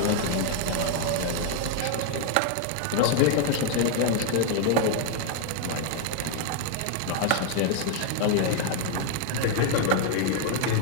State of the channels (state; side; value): different; both; correlation 0.00